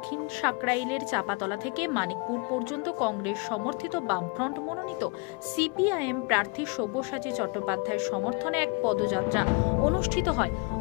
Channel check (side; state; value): right; quieter; 30.4 dB